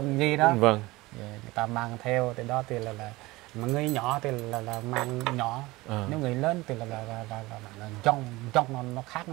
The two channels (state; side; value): quieter; left; 20.5 dB